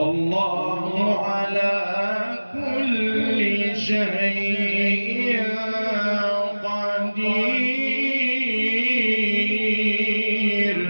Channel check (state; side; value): inverted; both; correlation -1.00